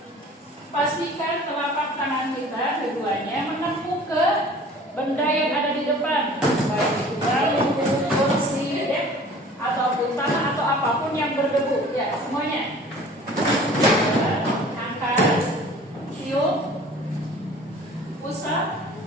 Pastikan telapak tangan kita keduanya menempuh ke benda yang ada di depan, baik itu bambu, kursi, ataupun tanah atau apapun yang berdebu. Ya, semuanya. Angkat, tiup, usap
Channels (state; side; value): normal; both; correlation 0.47